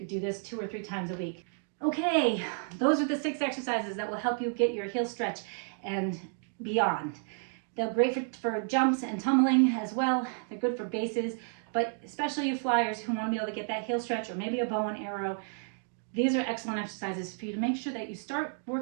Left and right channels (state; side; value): silent; left; 57 dB below the other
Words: do this 2 or 3 times a week. Okay, those are the 6 exercises that will help you get your heel stretch and beyond. They're great for jumps and tumbling as well. They're good for bases, but especially you flyers who want to be able to get that heel stretch or maybe a bow and arrow, these are excellent exercises for you to make sure that you start